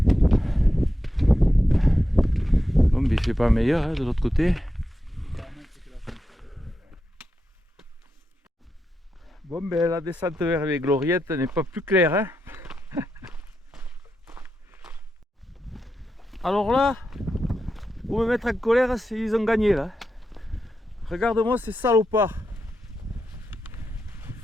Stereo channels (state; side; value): normal; both; correlation 0.88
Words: Bon, mais c'est pas meilleur hein, de l'autre côté. Bon, ben la descente vers les gloriettes n'est pas plus claire. Hein. Alors là, pour me mettre en colère, ils ont gagné là. Regarde-moi ces salopards.